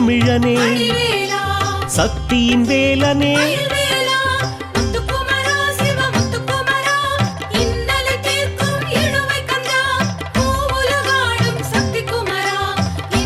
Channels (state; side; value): identical; both; correlation 1.00